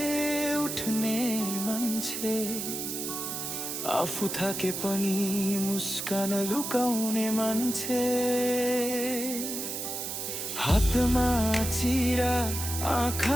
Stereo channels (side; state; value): right; noise; hiss, 4 dB below the sound